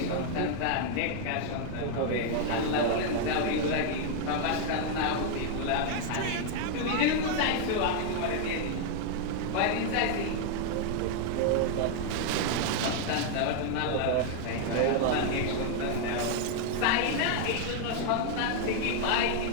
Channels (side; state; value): both; different; correlation 0.00